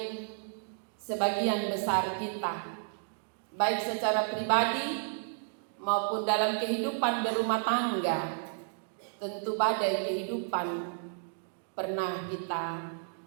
sebagian besar kita, baik secara pribadi maupun dalam kehidupan berumah tangga, tentu badai kehidupan pernah kita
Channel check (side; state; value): left; silent; digital silence